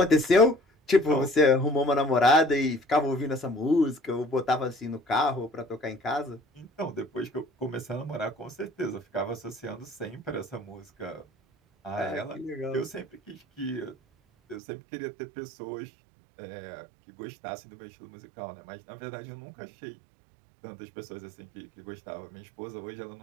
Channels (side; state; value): left; drops out; at 14.6 s